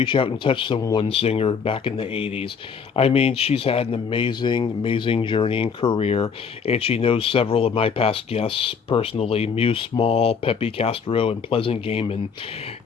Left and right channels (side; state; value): right; quieter; 6.2 dB